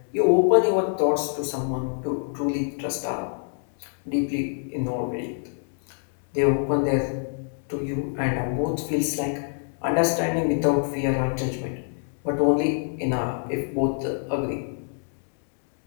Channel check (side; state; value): right; silent; digital silence